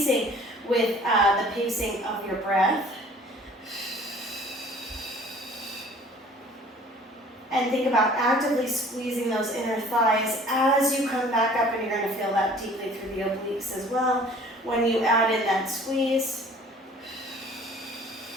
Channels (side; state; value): both; normal; correlation 0.51